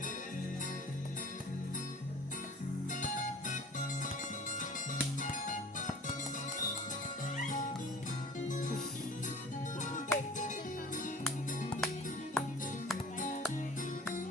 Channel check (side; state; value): both; normal; correlation 0.44